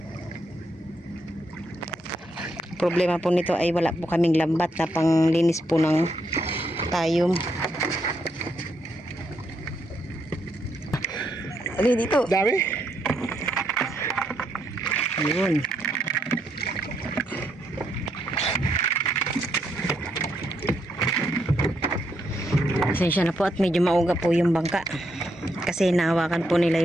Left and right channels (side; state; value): both; normal; correlation 0.78